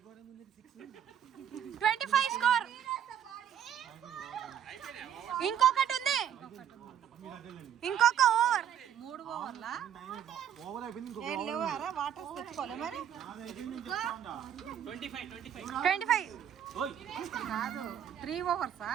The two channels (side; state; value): left; quieter; 9.4 dB